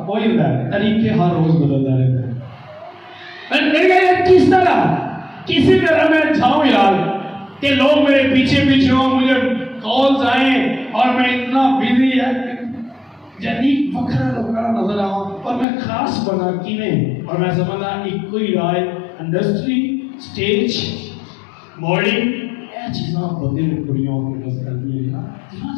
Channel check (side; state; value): right; drops out; at 15.7 s